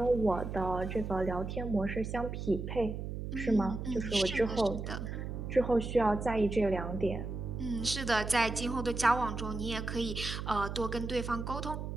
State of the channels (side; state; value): right; noise; hum, 5 dB below the sound